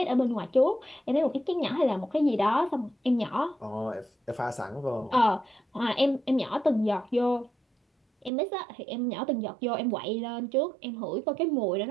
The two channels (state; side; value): drops out; left; at 8.3 s